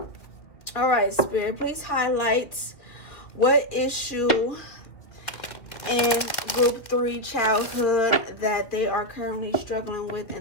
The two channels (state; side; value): late; right; 2.2 ms